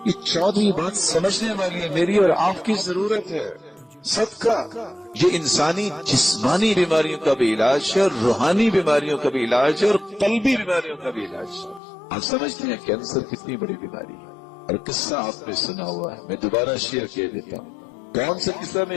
یہ 14ویں بات سمجھنے والی ہے، میری اور آپ کی ضرورت ہے. صدقہ یہ انسانی جسمانی بیماریوں کا بھی علاج ہے، اور روحانی بیماریوں کا بھی علاج ہے، اور قلبی بیماریوں کا بھی علاج ہے. آپ سمجھتے ہیں کینسر کتنی بڑی بیماری ہے، اور قصہ آپ نے سنا ہوا ہے، میں دوبارہ شیئر کر دیتا ہوں. کون سا قصہ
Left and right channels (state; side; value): drops out; right; at 11.8 s